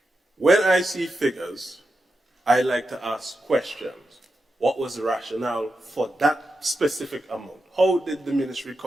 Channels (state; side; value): normal; both; correlation 0.88